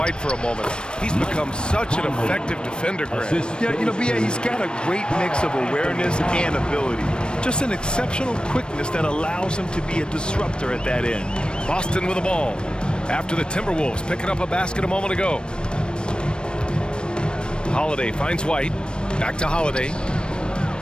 for a moment, he's become such an effective defender, Grant. Yeah, you know, B.A., he's got a great mix of awareness and ability. Just an exceptional quickness that allows him to be a disruptor at that end. Boston with the ball after the Timberwolves picking up a basket a moment ago. Holiday finds White. Back to Holiday.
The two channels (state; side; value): late; right; 0.053 ms